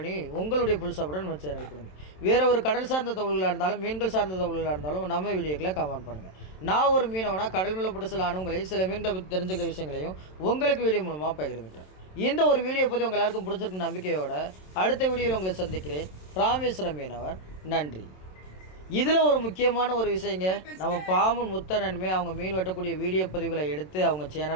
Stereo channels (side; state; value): right; late; 27 ms